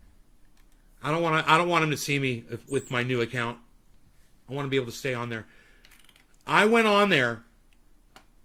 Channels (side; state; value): both; identical; correlation 1.00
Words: I don't want him to see me with my new account. I want to be able to stay on there. I went on there